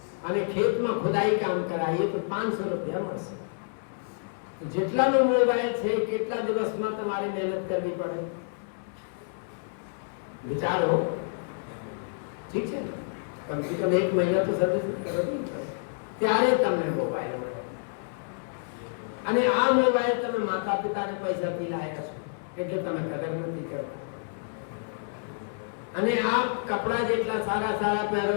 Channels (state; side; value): silent; right; 59 dB below the other